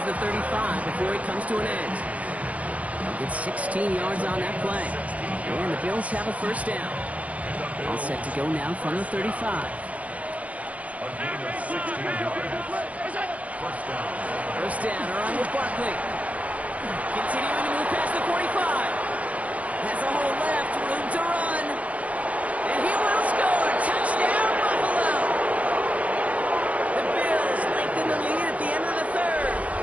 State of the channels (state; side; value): late; left; 0.066 ms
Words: the 35 before it comes to an end. They'll get 16 yards on that play. And the Bills have a 1st down. All set to go now from the 35. A gain of 16 yards. 1st down. 1st down, around with Barkley. Continuing to move past the 45. Has a hole left, room to run. And he will score. Touchdown, Buffalo. The Bills lengthen the lead at the end of the 3rd.